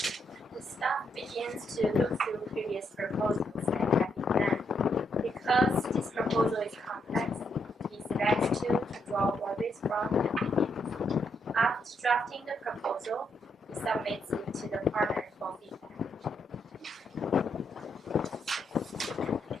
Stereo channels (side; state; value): both; normal; correlation 0.78